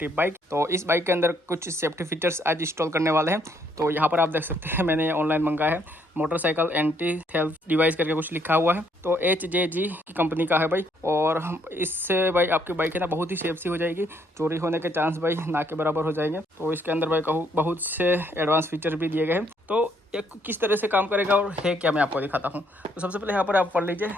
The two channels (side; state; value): both; normal; correlation 0.69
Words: बाइक। तो इस बाइक के अंदर कुछ सेफ्टी फीचर्स आज इंस्टॉल करने वाले हैं। तो यहाँ पर आप देख सकते हैं मैंने ऑनलाइन मंगाया है, मोटरसाइकिल एंटी थेफ्ट डिवाइस करके कुछ लिखा हुआ है। तो HJG की कंपनी का है भाई। और इससे भाई आपकी बाइक है ना बहुत ही सेफ सी हो जाएगी, चोरी होने के चांस भाई ना के बराबर हो जाएंगे। तो इसके अंदर भाई कहूँ बहुत से एडवांस फीचर भी दिए गए हैं। तो ये किस तरह से काम करेगा और है क्या, मैं आपको दिखाता हूँ। तो सबसे पहले यहाँ पर आप पढ़ लीजिए,